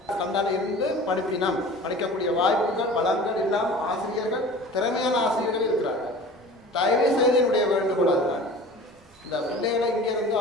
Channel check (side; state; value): both; normal; correlation 0.41